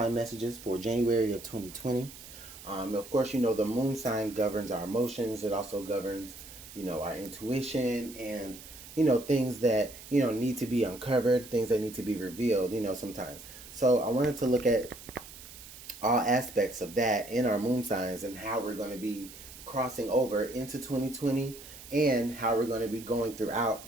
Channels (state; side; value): noise; right; hiss, 16 dB below the sound